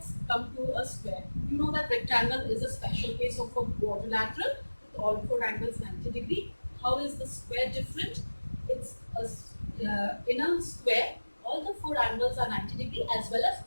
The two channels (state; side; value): inverted; both; correlation -1.00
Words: come to a square. You know that rectangle is a special case of a quadrilateral with all four angles 90 degree. How is the square different? It's in a square, all the four angles are 90 degree as well as